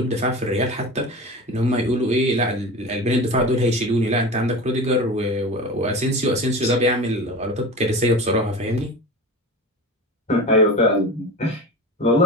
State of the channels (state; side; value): normal; both; correlation 0.30